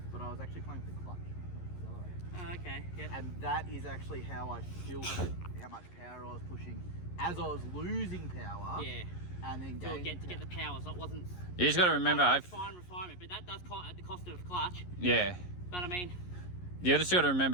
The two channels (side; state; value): right; late; 11 ms